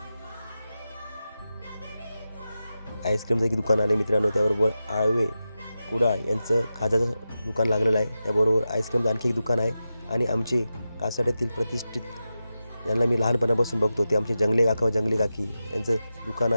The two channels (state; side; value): inverted; both; correlation -0.91